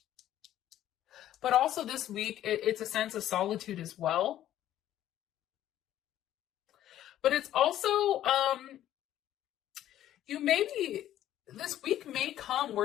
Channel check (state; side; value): quieter; right; 12.3 dB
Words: But also this week, it's a sense of solitude as well. But it's also, this week may come